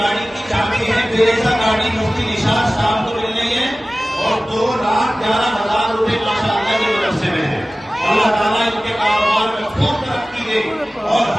की चाबी है, फिरेजा गाड़ी मुफ्ती निशात साहब को मिल रही है और 2,11,000 रुपए माशाअल्लाह के मदरसे में है। अल्लाह ताला इनके कारोबार में खूब तरक्की दे और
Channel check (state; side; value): normal; both; correlation 0.97